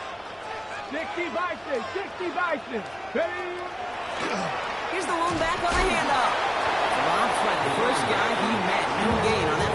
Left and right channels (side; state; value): both; identical; correlation 1.00